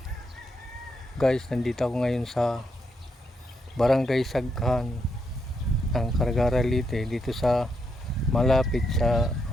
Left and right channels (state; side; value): normal; both; correlation 0.80